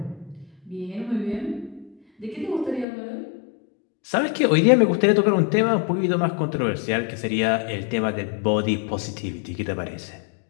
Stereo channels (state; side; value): drops out; right; at 2.9 s